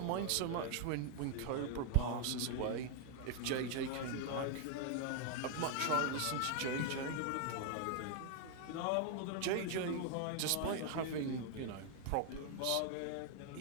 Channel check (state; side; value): different; both; correlation 0.00